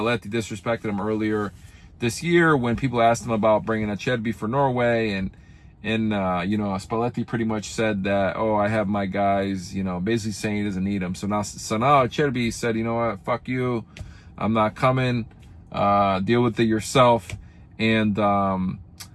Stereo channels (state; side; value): identical; both; correlation 1.00